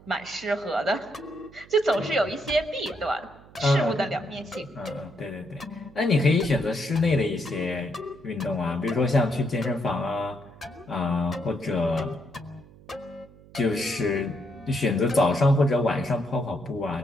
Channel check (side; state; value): right; noise; hum, 23 dB below the sound